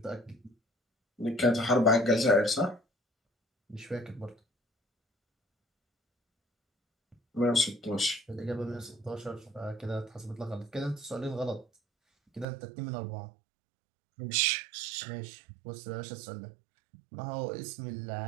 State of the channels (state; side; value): drops out; left; at 12.5 s